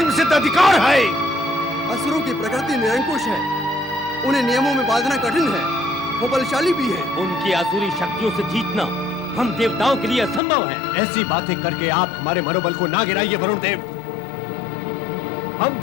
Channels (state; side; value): drops out; right; at 10.4 s